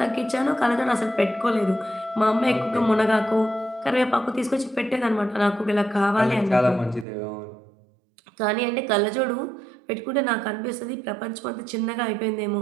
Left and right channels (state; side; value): drops out; left; at 7.1 s